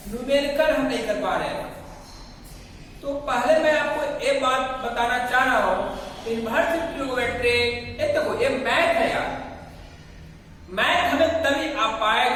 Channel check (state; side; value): identical; both; correlation 1.00